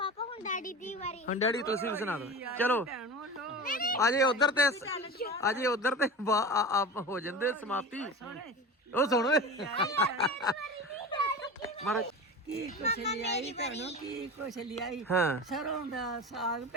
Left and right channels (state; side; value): normal; both; correlation 0.30